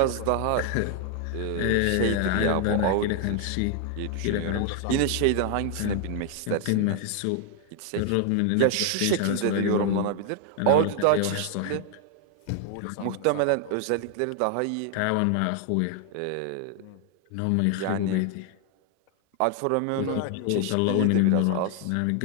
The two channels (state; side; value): different; both; correlation 0.00